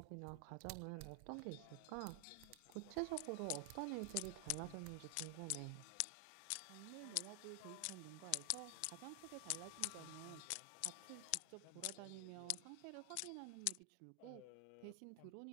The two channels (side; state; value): both; different; correlation 0.00